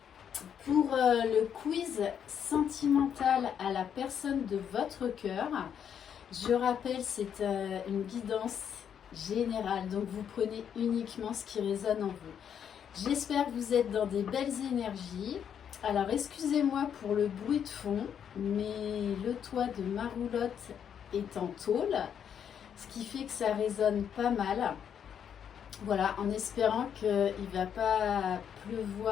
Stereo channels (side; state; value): right; quieter; 8.4 dB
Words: pour le quiz sentimental à la personne de votre cœur. Je rappelle, c'est une guidance générale, donc vous prenez uniquement ce qui résonne en vous. J'espère que vous êtes dans des belles énergies. Alors excusez-moi pour le bruit de fond, mais le toit de ma roulotte est en tôle, ce qui fait que ça résonne pas mal. Voilà, en espérant qu'il ne va pas